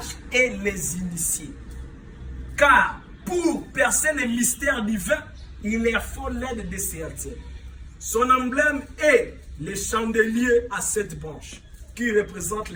et les initiés. Car pour percer les mystères divins, il leur faut l'aide de ces altères. Son emblème est le chandelier à 7 branches, qui représente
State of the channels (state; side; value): identical; both; correlation 1.00